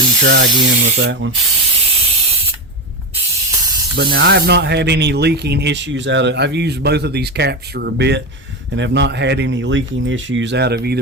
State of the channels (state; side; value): normal; both; correlation 0.16